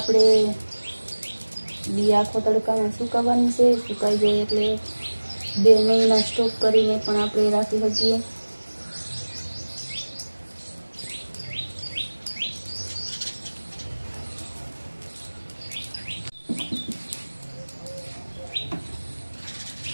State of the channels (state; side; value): inverted; both; correlation -1.00